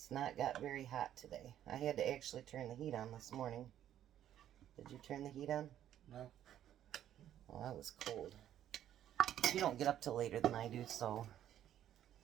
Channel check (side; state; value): left; quieter; 11.1 dB